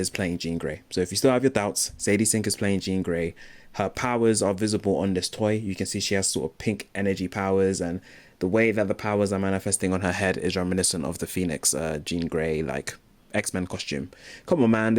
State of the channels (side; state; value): both; identical; correlation 1.00